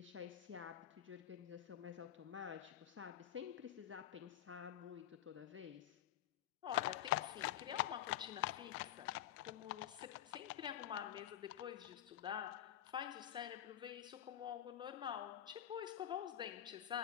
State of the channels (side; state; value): right; quieter; 11.6 dB